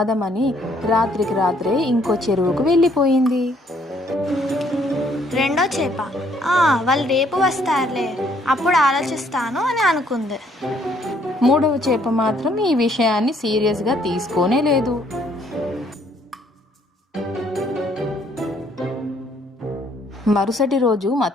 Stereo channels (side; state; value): both; normal; correlation 0.65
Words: రాత్రికి రాత్రే ఇంకో చెరువుకు వెళ్ళిపోయింది. రెండో చేప వాళ్ళు రేపు వస్తారులే, అప్పుడు ఆలోచిస్తాను అని అనుకుంది. మూడవ చేప మాత్రం ఈ విషయాన్ని సీరియస్గా తీసుకోనే లేదు. మరుసటి రోజు